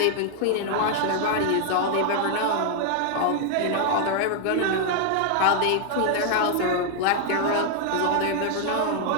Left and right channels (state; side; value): different; both; correlation 0.00